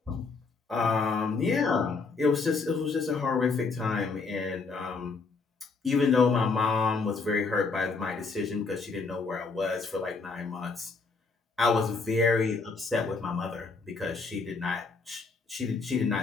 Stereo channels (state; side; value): quieter; right; 4.4 dB